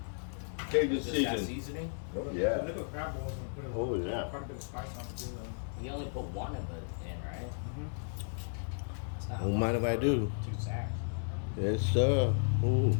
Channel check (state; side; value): silent; right; digital silence